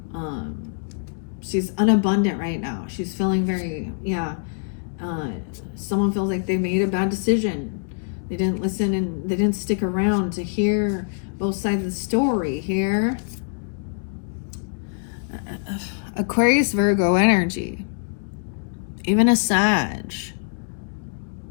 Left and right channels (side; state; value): right; silent; digital silence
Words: She's unabundant right now. She's feeling very, someone feels like they made a bad decision. They didn't listen and they didn't stick around to hear both sides of the story here. Aquarius, Virgo energy. Even a Sag.